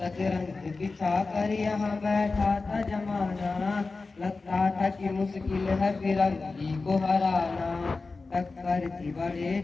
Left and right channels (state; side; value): quieter; right; 3.9 dB